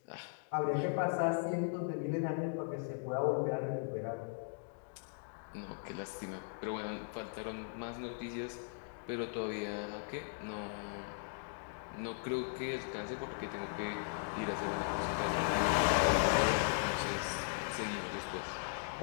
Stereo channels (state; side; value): silent; right; digital silence